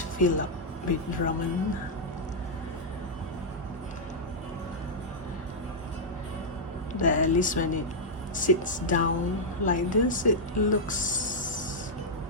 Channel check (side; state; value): both; normal; correlation -0.06